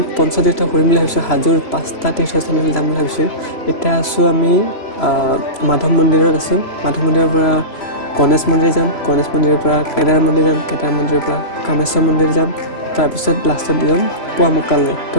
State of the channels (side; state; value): right; late; 3.0 ms